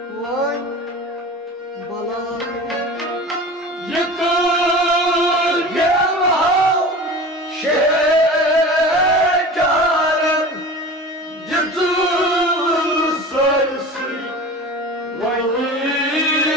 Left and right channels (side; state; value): both; normal; correlation 0.35